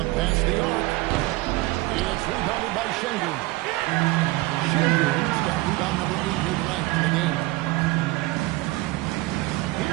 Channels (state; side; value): quieter; left; 20.5 dB